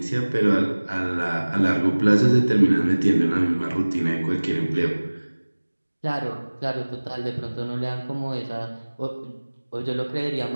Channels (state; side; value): inverted; both; correlation -1.00